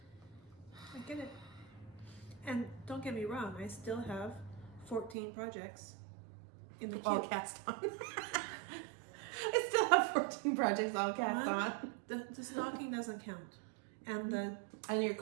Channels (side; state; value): left; drops out; at 5.2 s